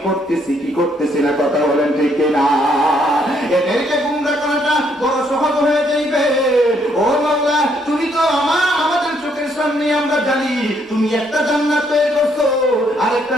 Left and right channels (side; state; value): both; normal; correlation 0.70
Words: করতেছি কি করতেছি না? কথা বলেন ঠিক না? এদেরকে গুমরা করাটা বড় সহজ হয়ে যাইবে। ও মাওলা, তুমি তো আমাদের চোখের সামনে আমরা জানি, তুমি একটা জান্নাত তৈরি করছো, আরেকটা